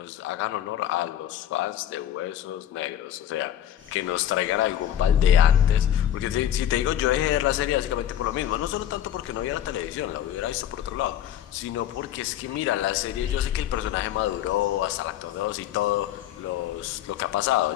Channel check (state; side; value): quieter; right; 11.1 dB